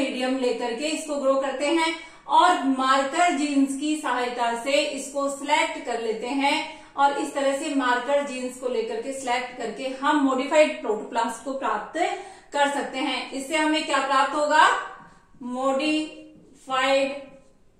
लेकर के इसको ग्रो करते हैं और मार्कर जीन्स की सहायता से इसको सिलेक्ट कर लेते हैं और इस तरह से मार्कर जीन्स को लेकर के सिलेक्ट करके हम मॉडिफाइड प्रोटोप्लास्ट को प्राप्त कर सकते हैं। इससे हमें क्या प्राप्त होगा? Modified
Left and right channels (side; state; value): both; identical; correlation 1.00